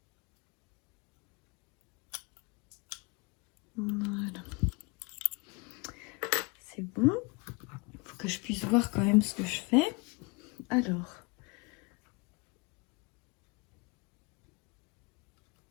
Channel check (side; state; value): right; quieter; 28.5 dB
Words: Voilà. C'est bon. Il faut que je puisse voir quand même ce que je fais. Alors.